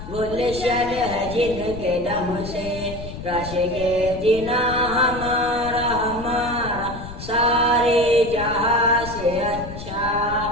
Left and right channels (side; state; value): left; noise; rumble, 11 dB below the sound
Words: गुलशन है जिनके दम से रश के जिना हमारा हमारा सारे जहां से अच्छा